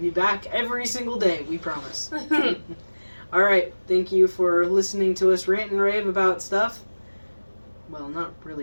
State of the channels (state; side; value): inverted; both; correlation -1.00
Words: be back every single day, we promise. Alright, thank you for listening to us rant and rave about stuff. Well, not